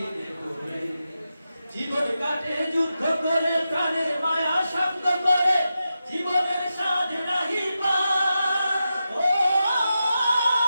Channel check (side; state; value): both; inverted; correlation -0.89